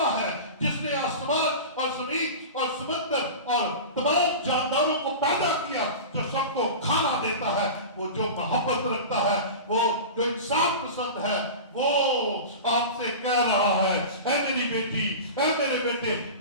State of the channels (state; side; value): inverted; both; correlation -0.30